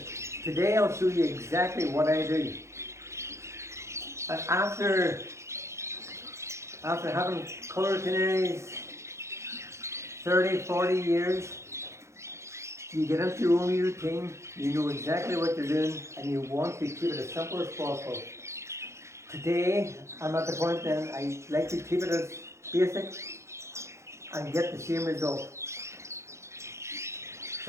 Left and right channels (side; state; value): left; late; 0.14 ms